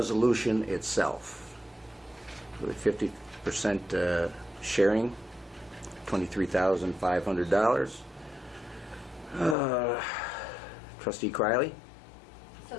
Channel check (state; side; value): drops out; right; at 9.6 s